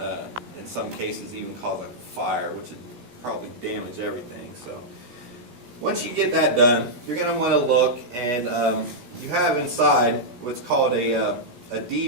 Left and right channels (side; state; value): left; late; 17 ms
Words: in some cases, even cause a fire, which would probably damage everything. So once you get that done, you're going to want to look, and you have inside what's called a